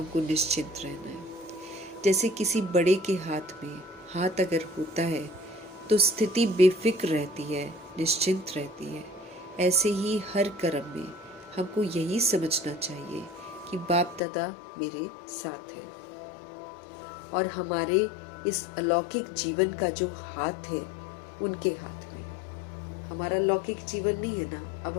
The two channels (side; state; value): right; drops out; at 14.2 s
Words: निश्चिंत रहना है। जैसे किसी बड़े के हाथ में हाथ अगर होता है तो स्थिति बेफिक्र रहती है, निश्चिंत रहती है। ऐसे ही हर कर्म में हमको यही समझना चाहिए कि बाप दादा मेरे साथ है और हमारे इस अलौकिक जीवन का जो हाथ है उनके हाथ में है। हमारा लौकिक जीवन नहीं है ना, अब